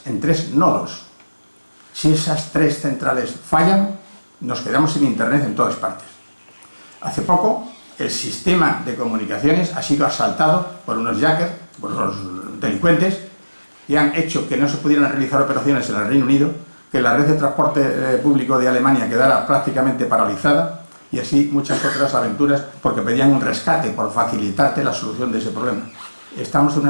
en 3 nodos. Si esas 3 centrales fallan, nos quedamos sin Internet en todas partes. Hace poco, el sistema de comunicaciones ha sido asaltado por unos hackers, por unos delincuentes, que han hecho que no se pudieran realizar operaciones en el Reino Unido, que la red de transporte público de Alemania quedara prácticamente paralizada, y así muchas otras aventuras, porque pedían un rescate por facilitarte la solución de ese problema. Estamos en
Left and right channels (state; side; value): inverted; both; correlation -1.00